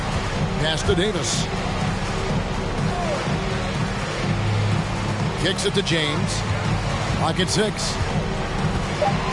Pass to Davis. Kicks it to James. Pocket 6.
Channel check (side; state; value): both; identical; correlation 1.00